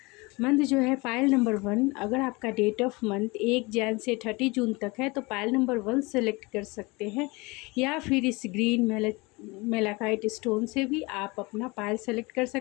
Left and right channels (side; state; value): right; quieter; 25.2 dB